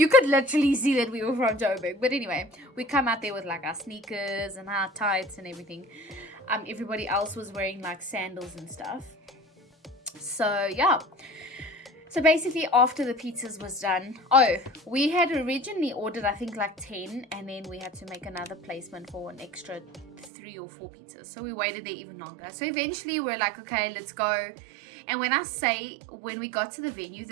could literally see that we were from Joburg. But anyway, we come out there with like our sneakers and our tights and everything. Everybody else was wearing like sandals and stuff. So yeah. So basically after the pizzas was done, we had originally ordered I think like 10, and then we had to make another placement for an extra 3 or 4 pizzas. So we waited there even longer. So eventually we're like, okay, let's go. And when we got to the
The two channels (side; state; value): left; drops out; at 20.3 s